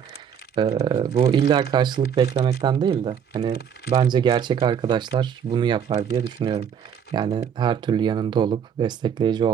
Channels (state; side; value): quieter; left; 8.0 dB